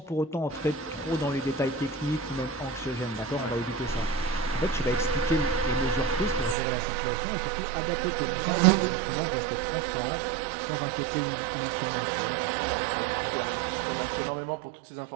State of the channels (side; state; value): left; drops out; at 6.6 s